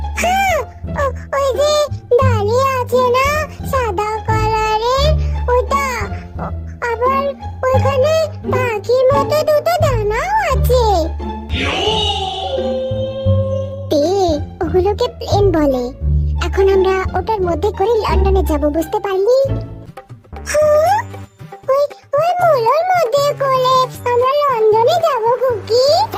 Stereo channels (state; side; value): identical; both; correlation 1.00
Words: হ্যাঁ, ওই যে দাঁড়িয়ে আছে না সাদা কালারের, ওটা। আবার ওইখানে পাখির মতো দুটো দানাও আছে। ওগুলোকে প্লেন বলে। এখন আমরা ওটার মধ্যে করে লন্ডনে যাব, বুঝতে পারলি? ওই মুলোর মধ্যে করে আমরা লন্ডনে যাব কুকি?